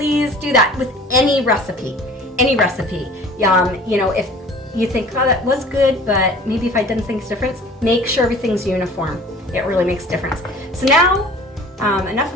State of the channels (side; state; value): both; normal; correlation 0.46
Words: do that with any recipe, any recipe. You know, if you think, oh, that was good, but maybe if I done things different, make sure everything's uniform. It really makes a difference. So now, enough